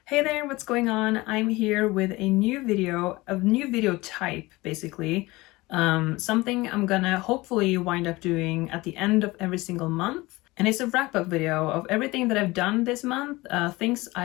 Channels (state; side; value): quieter; right; 21.1 dB